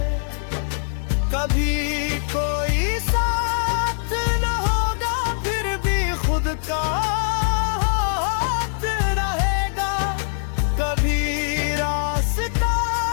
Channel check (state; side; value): silent; right; digital silence